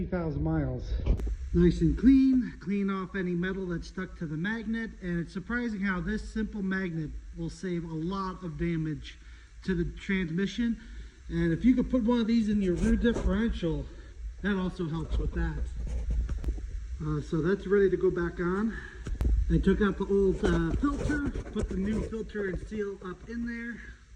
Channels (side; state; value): both; identical; correlation 1.00